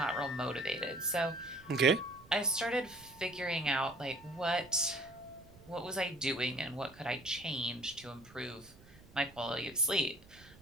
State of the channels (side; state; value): right; noise; rumble, 23 dB below the sound